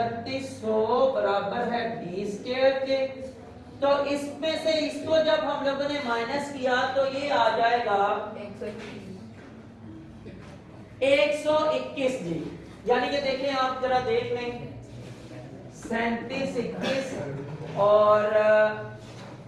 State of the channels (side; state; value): both; identical; correlation 1.00